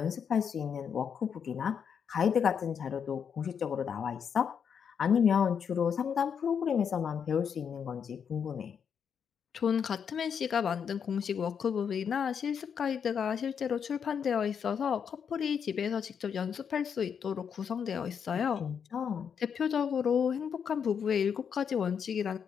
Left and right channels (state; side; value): quieter; right; 7.2 dB